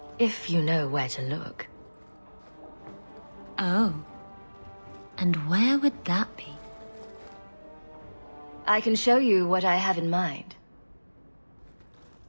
if you know where to look. Oh. And where would that be? I can show you what I have in mind.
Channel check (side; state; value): both; inverted; correlation -1.00